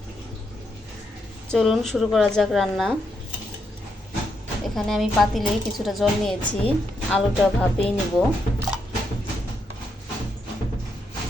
চলুন শুরু করা যাক রান্না। এখানে আমি পাতিলে কিছুটা জল নিয়েছি, আলুটা ভাপিয়ে নিব।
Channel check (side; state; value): both; normal; correlation 0.80